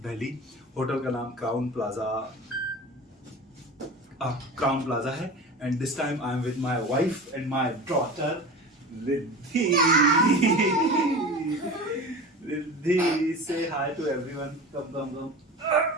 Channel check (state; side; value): normal; both; correlation 0.33